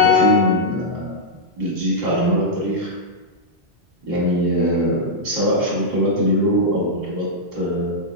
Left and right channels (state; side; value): normal; both; correlation -0.06